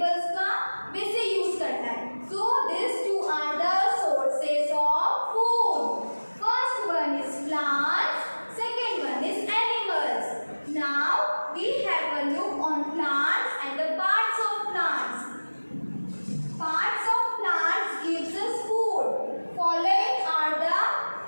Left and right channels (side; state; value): both; inverted; correlation -1.00